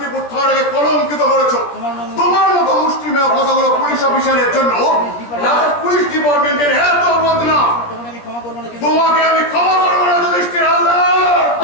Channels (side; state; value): right; late; 17 ms